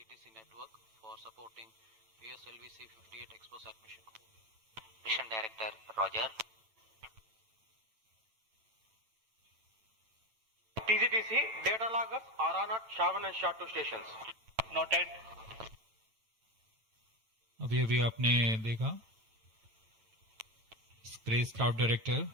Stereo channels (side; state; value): left; late; 9.0 ms